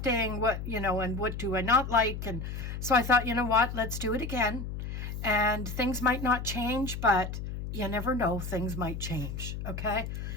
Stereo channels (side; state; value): left; noise; hum, 6 dB below the sound